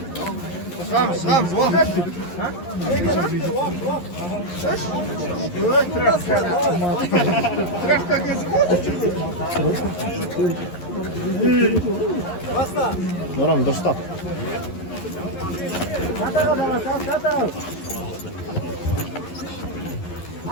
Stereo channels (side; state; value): right; late; 11 ms